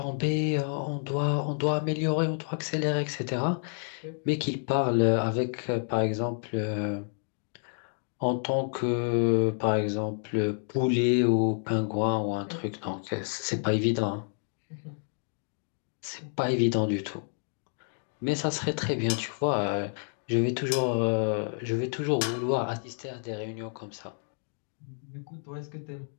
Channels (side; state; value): right; silent; 58 dB below the other